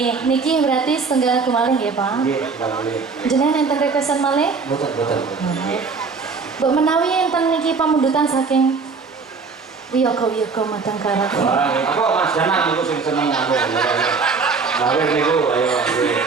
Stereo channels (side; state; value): left; quieter; 4.8 dB